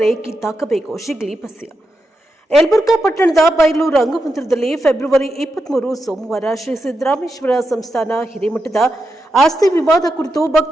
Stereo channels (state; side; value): normal; both; correlation 0.87